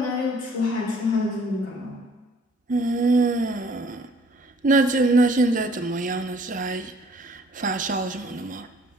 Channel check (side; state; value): both; normal; correlation 0.58